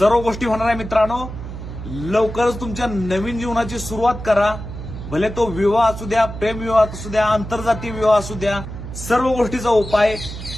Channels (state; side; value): noise; right; hum, 10 dB below the sound